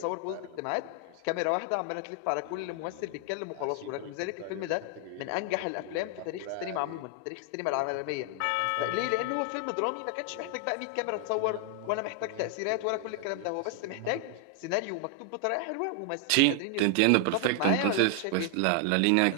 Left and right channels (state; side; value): different; both; correlation 0.00